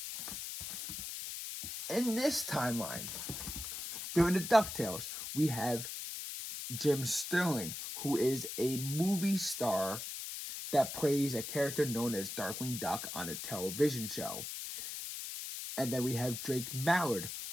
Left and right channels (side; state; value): left; noise; hiss, 6 dB below the sound